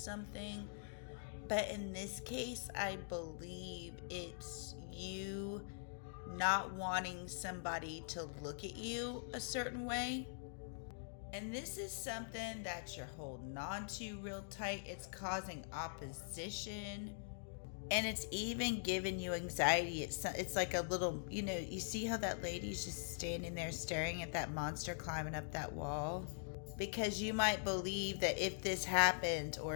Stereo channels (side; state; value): right; silent; digital silence